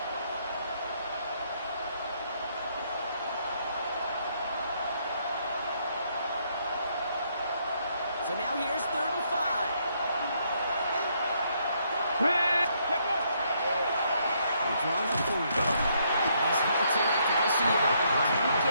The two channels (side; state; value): both; inverted; correlation -0.72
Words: So now here's 3rd and 5. Red. They're drawing up for him. He's halted after just a yard. Didn't